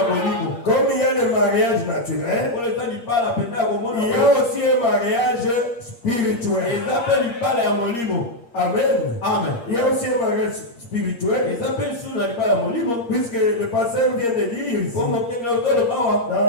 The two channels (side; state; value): right; late; 8.6 ms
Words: Comme il y a le mariage naturel, il y a aussi un mariage spirituel. Amen. Il y a aussi un mariage spirituel. Puisque le pasteur vient de dire ici, dans